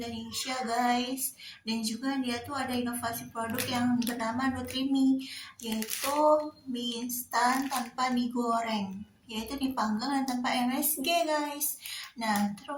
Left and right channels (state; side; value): identical; both; correlation 1.00